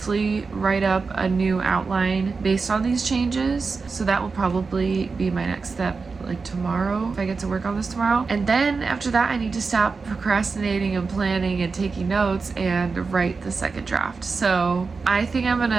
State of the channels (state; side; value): quieter; left; 4.6 dB